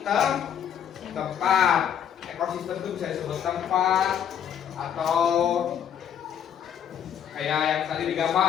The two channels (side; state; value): right; quieter; 8.9 dB